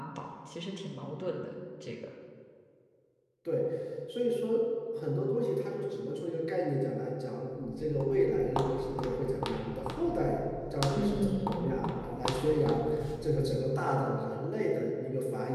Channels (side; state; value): both; identical; correlation 1.00